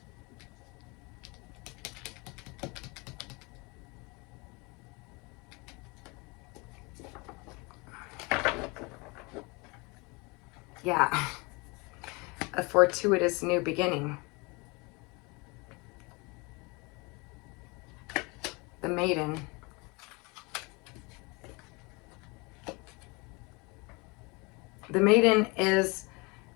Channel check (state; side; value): quieter; right; 27.8 dB